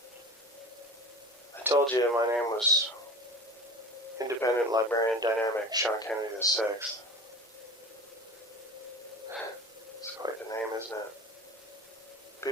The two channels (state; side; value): normal; both; correlation 0.35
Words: I told you my name was Independent Librarian Dynamic Sean Kennedy VI. It's quite the name, isn't it?